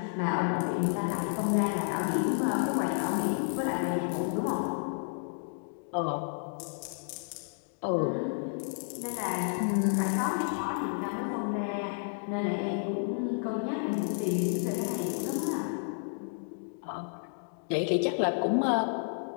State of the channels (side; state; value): right; silent; digital silence